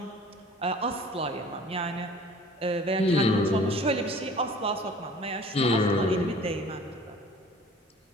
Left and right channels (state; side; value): normal; both; correlation 0.48